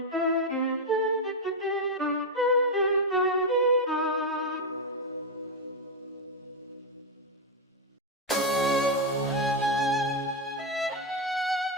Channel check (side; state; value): both; normal; correlation 0.03